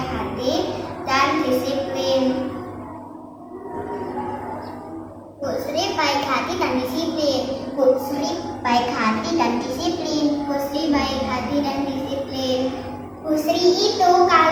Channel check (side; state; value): both; identical; correlation 1.00